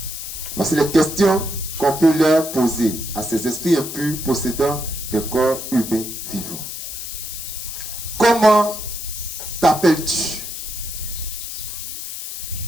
Voici les questions qu'on peut leur poser à ces esprits impurs possédant des corps humains vivants. Comment t'appelles-tu?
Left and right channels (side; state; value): left; noise; hiss, 7 dB below the sound